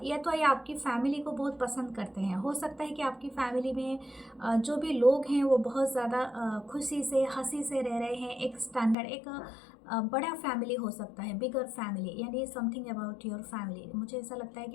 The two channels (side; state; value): right; drops out; at 9.0 s